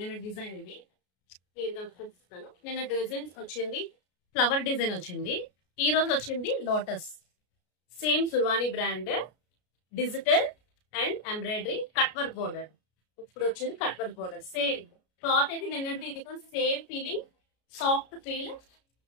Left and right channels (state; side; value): late; right; 33 ms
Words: డిజైన్ ఇది చూపిస్తాను. నిన్న డిజైన్ వచ్చింది ఫ్లవర్ డిజైన్ వచ్చింది, ఈ రోజు వచ్చింది లోటస్. సేమ్ సుర్వాణి brand, digital and embroidery, cut work border. ఇప్పుడు వచ్చింది cut work border. Same cloth అయితే నిన్నటి ఇది కూడా same feeling, soft feel,